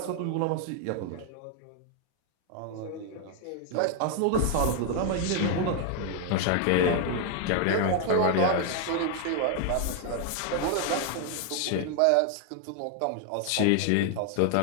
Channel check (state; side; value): different; both; correlation 0.01